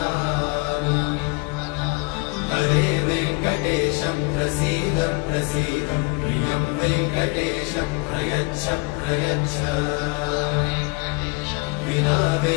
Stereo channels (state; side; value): quieter; right; 29.8 dB